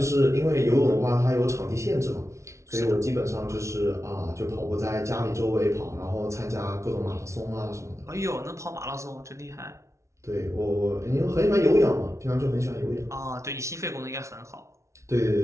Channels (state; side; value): late; left; 0.14 ms